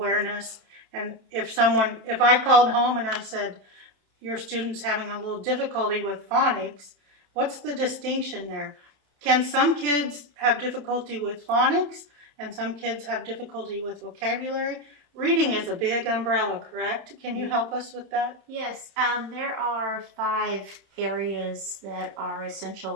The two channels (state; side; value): late; left; 30 ms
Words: And if I called home and I said, your student's having a little difficulty with phonics, what's the distinction there? Can some kids have difficulty with phonics and some kids have difficulty with vocabulary? Reading is a big umbrella, correct? Can you help us with that? Yes, there are 5 areas that are